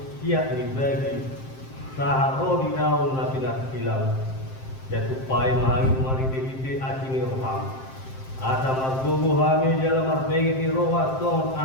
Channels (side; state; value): right; late; 7.6 ms